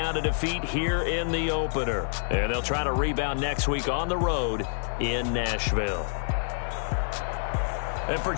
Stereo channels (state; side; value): silent; right; digital silence